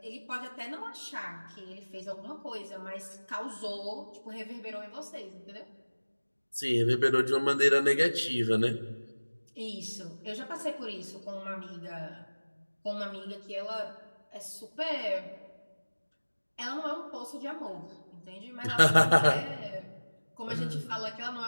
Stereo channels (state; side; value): inverted; both; correlation -1.00